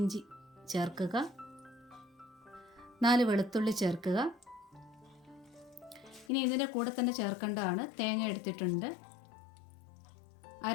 ചേർക്കുക. 4 വെളുത്തുള്ളി ചേർക്കുക. ഇനി ഇതിൻ്റെ കൂടെ തന്നെ ചേർക്കേണ്ടതാണ് തേങ്ങ എടുത്തിട്ടുണ്ട്.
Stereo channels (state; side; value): drops out; right; at 6.2 s